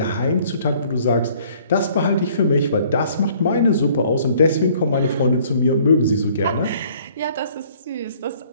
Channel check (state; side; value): inverted; both; correlation -0.58